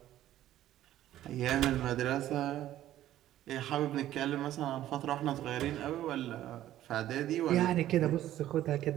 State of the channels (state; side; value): quieter; left; 13.1 dB